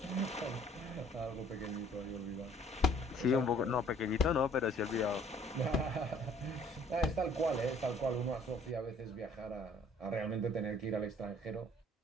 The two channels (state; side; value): normal; both; correlation 0.58